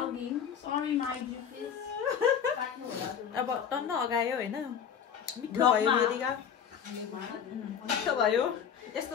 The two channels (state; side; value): quieter; right; 7.9 dB